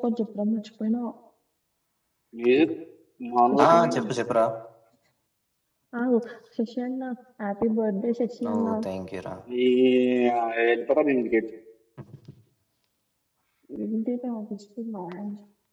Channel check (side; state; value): both; identical; correlation 1.00